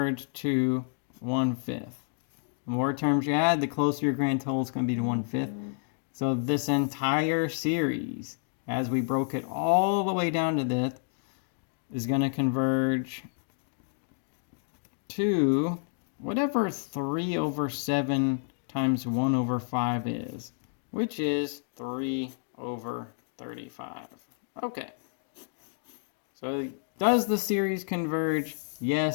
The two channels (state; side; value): silent; right; digital silence